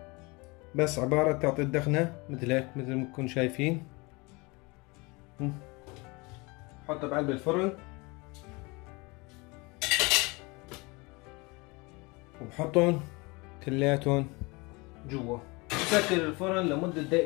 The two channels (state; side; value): quieter; right; 26.2 dB